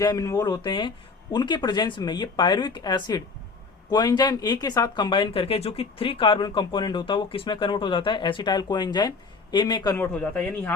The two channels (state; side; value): quieter; right; 4.5 dB